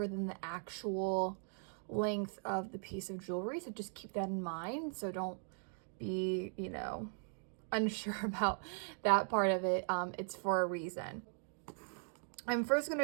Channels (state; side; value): silent; left; 52 dB below the other